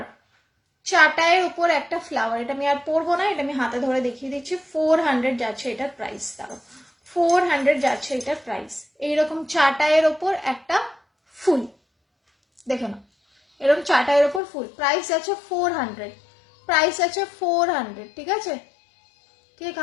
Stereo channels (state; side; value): drops out; right; at 14.4 s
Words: চাটাইয়ের উপর একটা ফ্লাওয়ার। এটা আমি আর পরবো না, এটা আমি হাতে ধরে দেখিয়ে দিচ্ছি। 400 যাচ্ছে এটার প্রাইস, দাঁড়ো 400 যাচ্ছে এটার প্রাইস। এইরকম চাটাইয়ের ওপর একটা ফুল, দেখে নাও, এরকম চাটাইয়ের ওপর ফুল, প্রাইস আছে 400, প্রাইস আছে 400, ঠিক আছে। কে